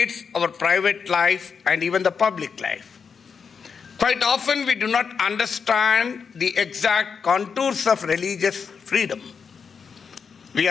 our private life and even the public life. Quite often we do not understand the exact contours of religious freedom. We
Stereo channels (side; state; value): right; quieter; 6.1 dB